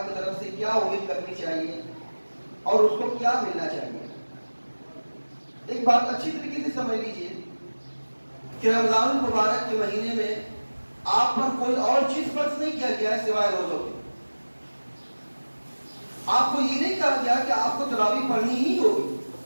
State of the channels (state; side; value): inverted; both; correlation -1.00